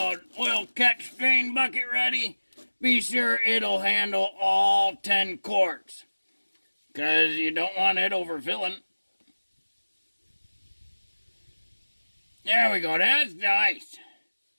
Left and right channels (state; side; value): inverted; both; correlation -1.00